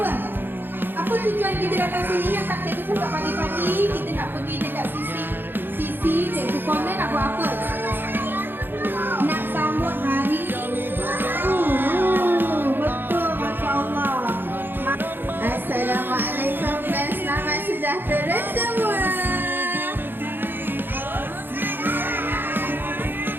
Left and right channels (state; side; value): late; left; 0.098 ms